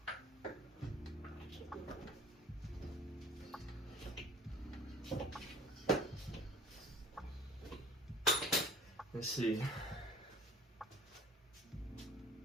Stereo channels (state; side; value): normal; both; correlation 0.47